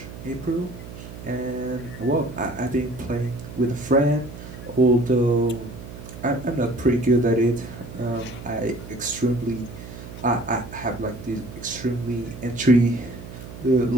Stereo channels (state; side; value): noise; right; hum, 13 dB below the sound